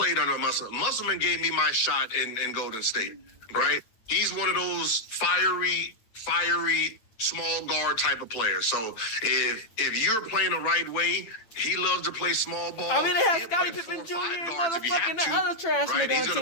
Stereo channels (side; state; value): right; late; 9.0 ms